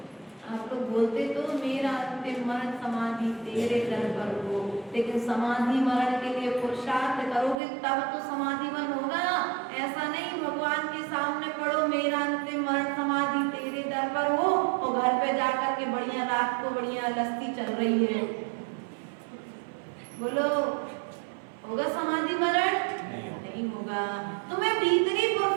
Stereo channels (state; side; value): drops out; left; at 7.6 s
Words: आप लोग बोलते तो मेरा अंतिम मरण समाधि तेरे दर पर हो, लेकिन समाधि मरण के लिए पुरुषार्थ करोगे तब तो समाधि मरण होगा। ऐसा नहीं भगवान के सामने पढ़ो मेरा अंतिम मरण समाधि तेरे दर पर हो, और घर पे जाकर के बढ़िया रात को बढ़िया लस्सी चल रही है, बोलो होगा समाधि मरण? नहीं होगा। तुम्हें भीतरी